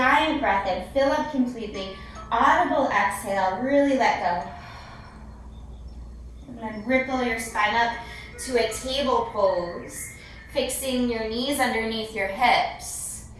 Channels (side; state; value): both; identical; correlation 1.00